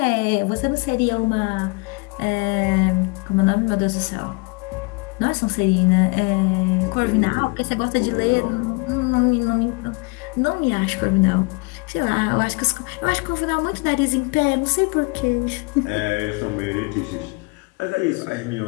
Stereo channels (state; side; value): quieter; right; 29.9 dB